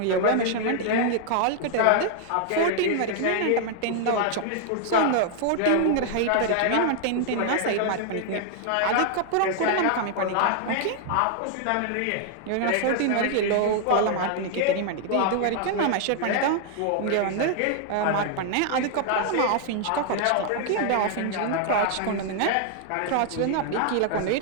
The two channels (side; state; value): both; different; correlation 0.00